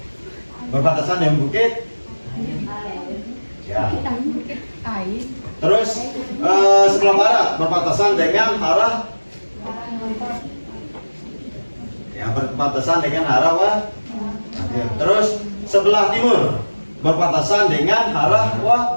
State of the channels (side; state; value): both; inverted; correlation -1.00